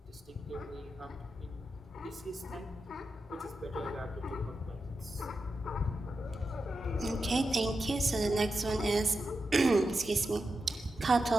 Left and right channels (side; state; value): both; normal; correlation 0.89